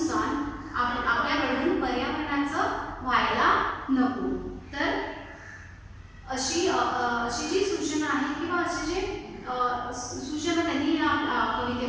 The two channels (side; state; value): both; identical; correlation 1.00